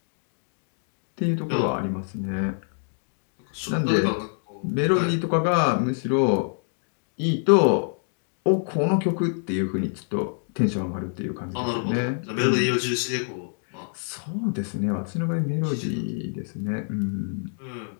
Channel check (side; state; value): right; silent; 61 dB below the other